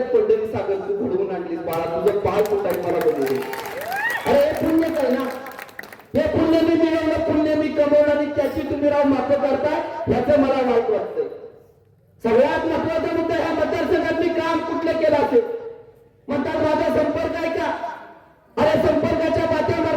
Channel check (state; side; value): identical; both; correlation 1.00